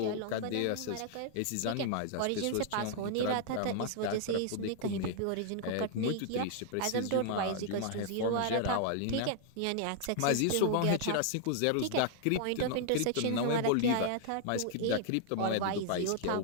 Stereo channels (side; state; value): both; different; correlation -0.01